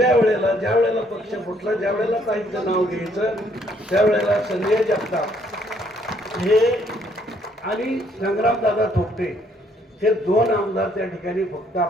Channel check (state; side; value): normal; both; correlation 0.67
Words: वेळेला ज्या वेळेला पक्ष फुटला, ज्या वेळेला काहींचं नाव घ्यायचं, त्यावेळेला संजय जगताप हे आणि संग्रामदादा थोपटे हे 2 आमदार त्या ठिकाणी फक्त